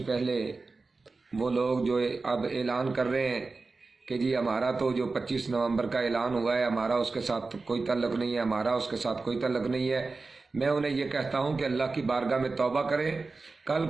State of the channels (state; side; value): quieter; left; 3.9 dB